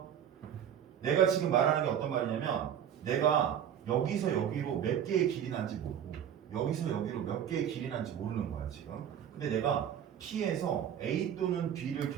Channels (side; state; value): left; quieter; 9.4 dB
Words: 내가 지금 말하는 게 어떤 말이냐면 내가 여기서 여기로 몇 개의 길이 난지 모르고 여기서 여기로 몇 개의 길이 난지 모르는 거야 지금. 근데 내가 P에서 A 또는 B를